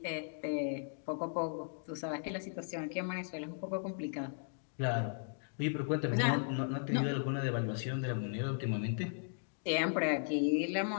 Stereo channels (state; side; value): silent; right; digital silence